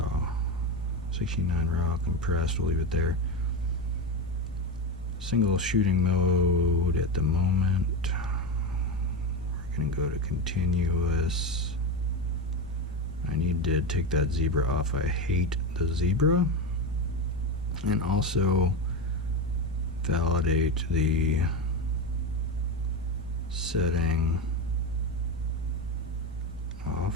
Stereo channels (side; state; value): both; normal; correlation 0.16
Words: 16.9 raw compressed. We'll leave it there. Single shooting mode at the moment. We're gonna go to continuous. I need to take that zebra off. I hate the zebra. And also validate the setting